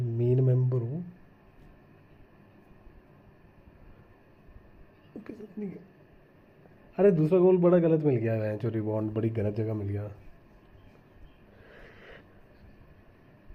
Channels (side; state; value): both; identical; correlation 1.00